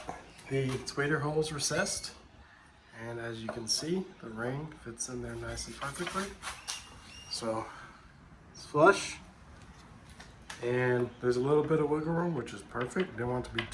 the tweeter holes recessed, and as you can see, the ring fits in there nice and perfectly. So it's flush, and there's a little bit of wiggle room, which is perfect. Didn't want it to be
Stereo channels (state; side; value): identical; both; correlation 1.00